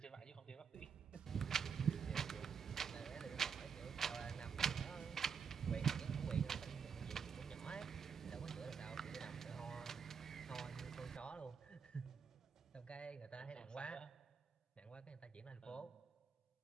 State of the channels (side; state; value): left; quieter; 6.4 dB